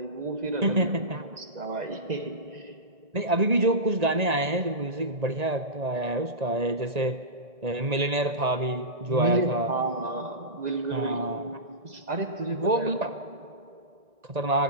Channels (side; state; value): left; late; 1.8 ms